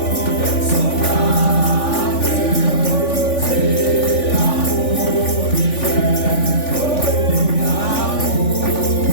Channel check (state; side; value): late; right; 3.5 ms